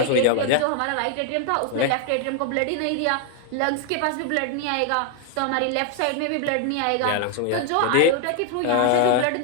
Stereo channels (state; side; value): different; both; correlation 0.00